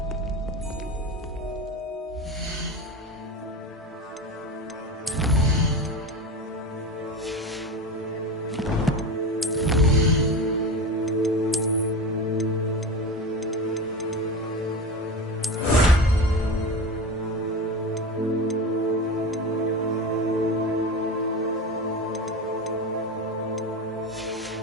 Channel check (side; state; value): both; normal; correlation 0.25